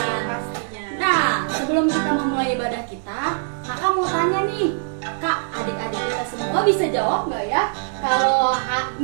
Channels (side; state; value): left; silent; digital silence